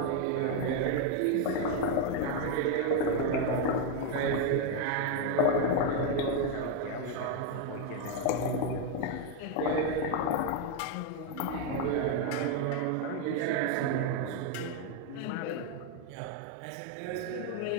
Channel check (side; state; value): both; different; correlation 0.01